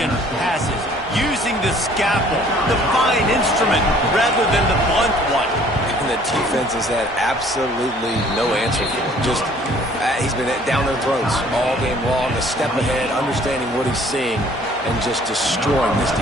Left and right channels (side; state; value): both; normal; correlation 0.56